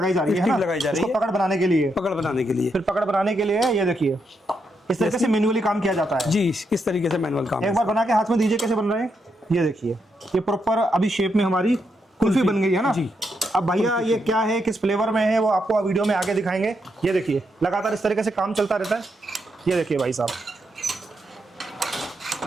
जा रही है, स्टिक लगाई जा रही है पकड़ बनाने के लिए। पकड़ बनाने के लिए, फिर पकड़ बनाने के लिए ये देखिए इस तरीके से मैन्युअली काम किया जाता है जी। इस तरीके से मैनुअल काम। एक बार बना के हाथ में दीजिए कैसे बन रहे हैं। ये देखिए ये प्रॉपर अभी शेप में हमारी कुल्फी बन गई है ना जी। अब भैया ये क्या है, किस फ्लेवर में है, वो आपको वीडियो में आगे दिखाएंगे। ये देखिए लगातार इस तरीके से काम चलता रहता है। ये देखिए भाई साहब,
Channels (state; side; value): normal; both; correlation 0.81